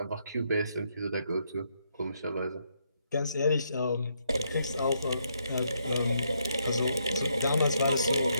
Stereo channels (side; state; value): both; inverted; correlation -0.76